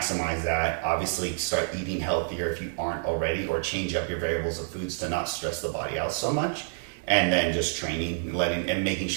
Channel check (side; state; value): left; silent; digital silence